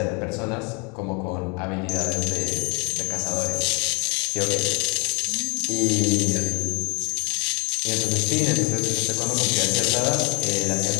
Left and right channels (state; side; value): quieter; right; 32.3 dB